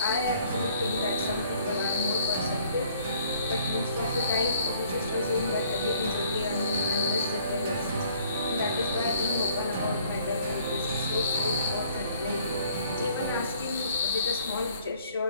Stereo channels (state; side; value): inverted; both; correlation -0.60